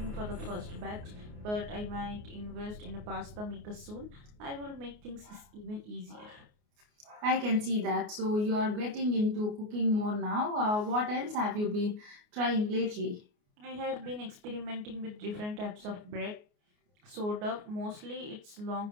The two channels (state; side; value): late; left; 29 ms